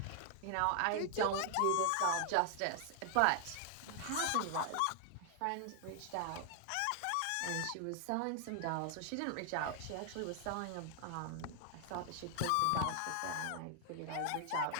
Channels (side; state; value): both; different; correlation 0.00